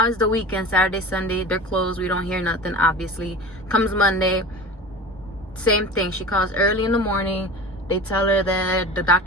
it's the weekend, Saturday, Sunday, they're closed, we don't hear nothing. Obviously comes Monday, same thing. She calls early in the morning, they tell her that the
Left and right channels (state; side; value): normal; both; correlation 0.34